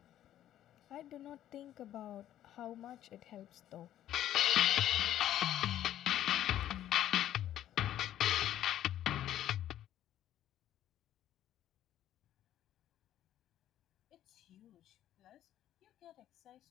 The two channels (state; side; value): quieter; right; 12.0 dB